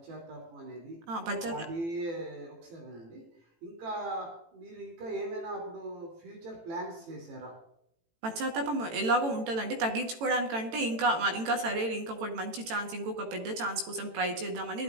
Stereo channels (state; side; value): late; left; 18 ms